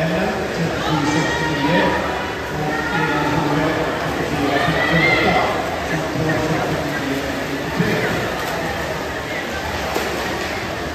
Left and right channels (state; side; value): identical; both; correlation 1.00